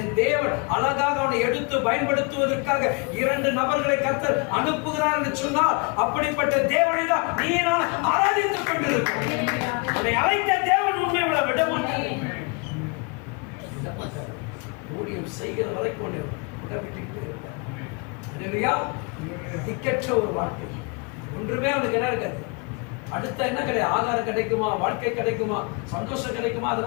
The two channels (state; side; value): quieter; right; 32.8 dB